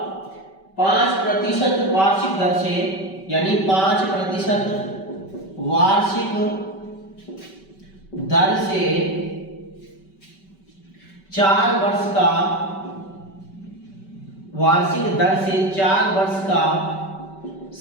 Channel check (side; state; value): right; late; 5.2 ms